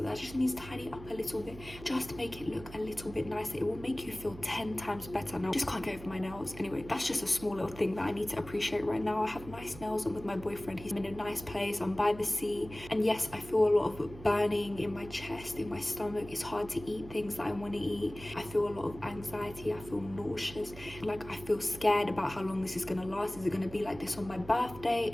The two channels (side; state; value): right; noise; hum, 15 dB below the sound